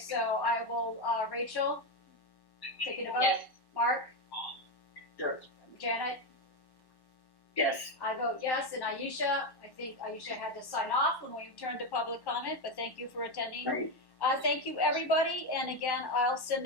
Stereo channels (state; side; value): late; right; 1.1 ms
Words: I will, Rachel, taking a vote. Yes. Mark? Yes. Janet? Yes. I vote yes, and Aisha, I think Aisha had to sign off when we turned to public comment, but thank you for attending. Right. Thank you, everybody, and again, I'll send